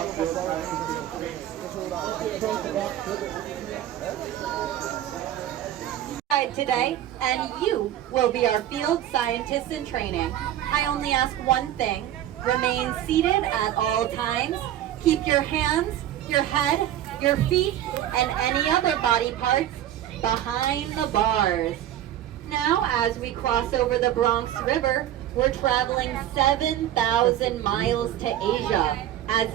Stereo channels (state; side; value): quieter; left; 12.0 dB